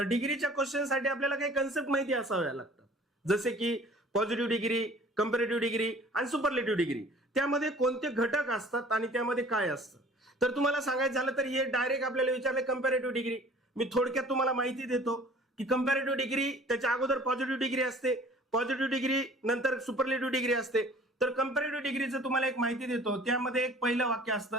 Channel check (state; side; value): normal; both; correlation 0.49